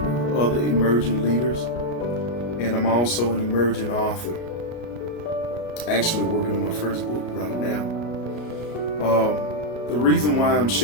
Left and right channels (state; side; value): late; right; 33 ms